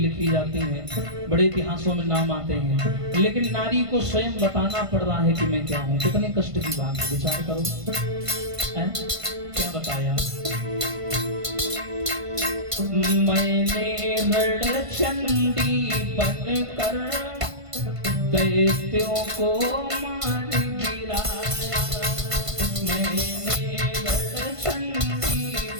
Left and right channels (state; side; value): late; left; 1.5 ms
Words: जाती हैं, बड़े इतिहासों में नाम आते हैं, लेकिन नारी को स्वयं बताना पड़ रहा है कि मैं क्या हूं। कितने कष्ट की बात है, विचार करो। क्या बताया, मैंने रणचंडी बनकर दैत्यों को मार गिराया, मैंने रणचंडी